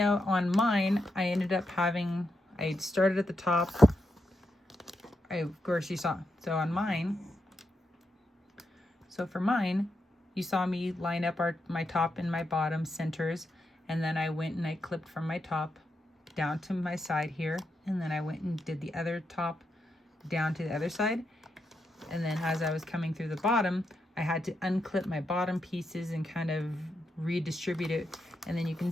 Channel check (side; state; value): both; normal; correlation 0.84